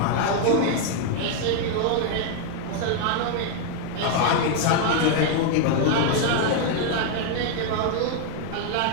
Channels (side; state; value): both; different; correlation 0.00